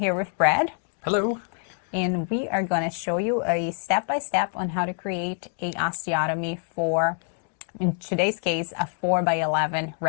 with Brad. Hello. And we are going to show you a step-by-step on how to create a osteotomy for, in today's case, a 4x11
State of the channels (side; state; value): right; silent; 57 dB below the other